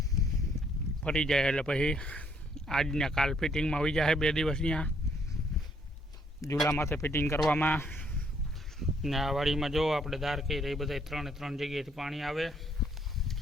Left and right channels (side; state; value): both; normal; correlation 0.68